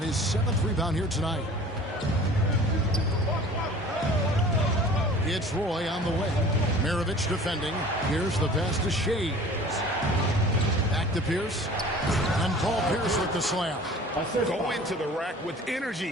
his 7th rebound here tonight. It's Roy on the way. Maravich defending. Here's the pass to Shays. Back to Pierce. And Paul Pierce with the slam. Go into the rack with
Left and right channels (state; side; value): normal; both; correlation 0.45